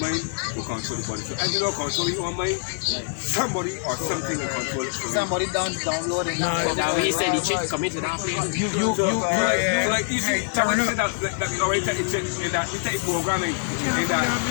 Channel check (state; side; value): silent; right; 62 dB below the other